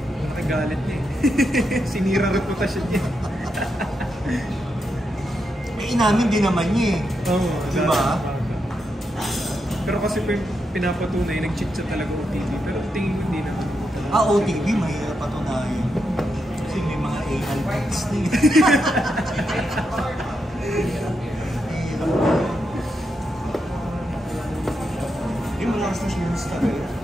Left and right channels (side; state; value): both; normal; correlation 0.84